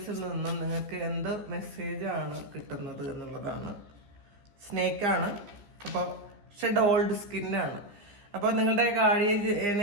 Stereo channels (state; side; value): late; left; 14 ms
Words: നിന്നും നിങ്ങൾക്ക് എന്ത് മെസ്സേജാണ് കിട്ടുന്നത് എന്നുള്ളതാണ്. സ്നേക്കാണ്. അപ്പോൾ ഷെഡ് ഓൾഡ് സ്കിന്നാണ്. അപ്പോൾ നിങ്ങളുടെ ഗാർഡിയൻ